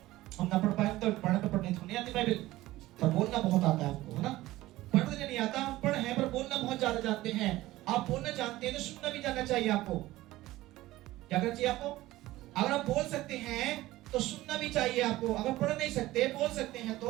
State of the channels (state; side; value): quieter; left; 17.0 dB